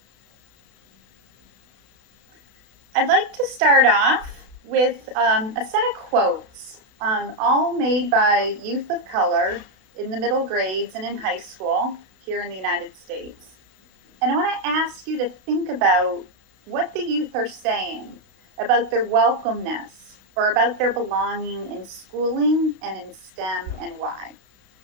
I'd like to start off with a set of quotes, all made by youth of color in the middle grades and in high school here in the United States. And I want to ask you to think about what the youth are saying about their welcomeness or about their belonging in schooling and in STEM and why.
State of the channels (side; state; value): left; late; 32 ms